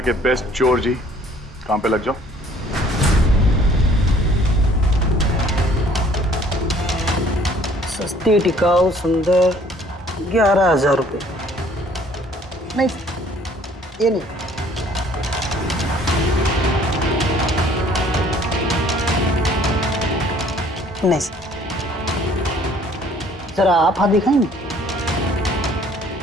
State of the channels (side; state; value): both; normal; correlation 0.57